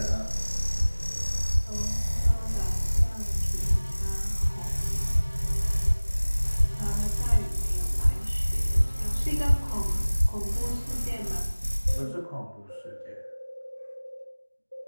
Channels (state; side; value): inverted; both; correlation -1.00